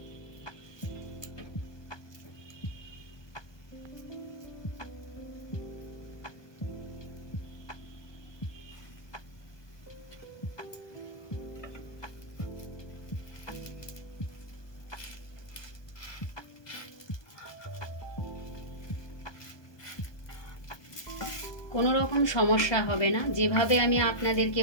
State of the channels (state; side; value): late; right; 1.2 ms